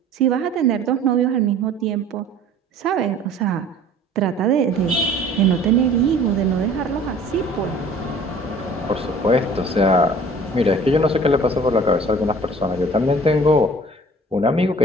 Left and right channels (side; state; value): both; normal; correlation 0.49